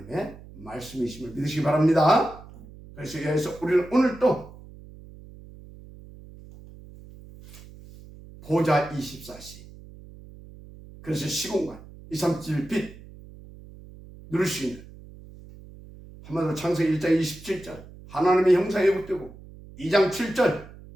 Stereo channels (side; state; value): right; noise; hum, 19 dB below the sound